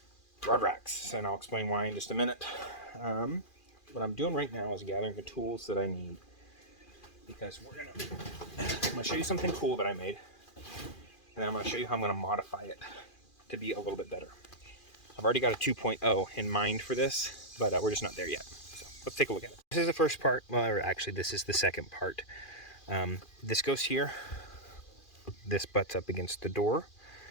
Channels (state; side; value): late; right; 2.4 ms